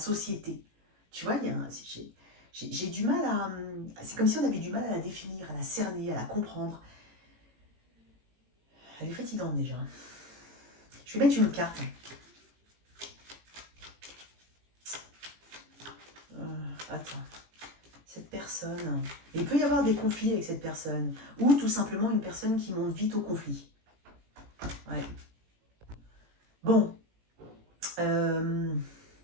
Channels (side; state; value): left; late; 18 ms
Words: Tu vois, j'ai du mal à... C'est comme si on avait du mal à la définir, à la cerner, à la comprendre. Elle est fatigante déjà. Je vais mettre une autre carte. Attends. Cette personne... Il peut y avoir des conflits avec cette personne. Ou tout simplement une personne qui monte vite au conflit. Ouais. Bon.